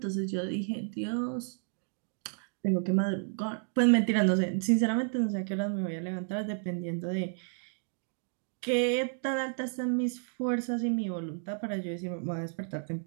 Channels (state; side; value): silent; left; digital silence